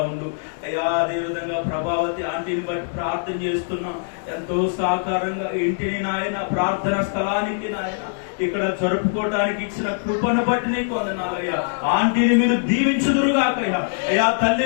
ఉండు అయ్యా. అదే విధంగా ప్రభావతి ఆంటీని బట్టి ప్రార్థన చేస్తున్నాం. ఎంతో సహకారంగా ఇంటిని నాయన ప్రార్థన స్థలానికి నాయన ఇక్కడ జరుపుకోవడానికి ఇచ్చిన కృపను బట్టి నీకు వందనాలయ్యా. ఆంటీని మీరు దీవించుదురుగాకయ్యా. అయ్యా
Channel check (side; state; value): right; silent; digital silence